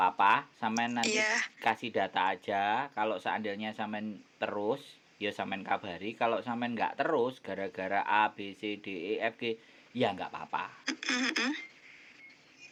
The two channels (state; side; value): identical; both; correlation 1.00